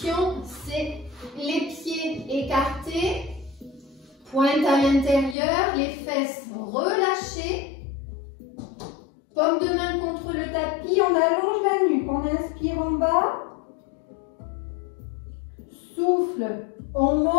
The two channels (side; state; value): right; drops out; at 5.4 s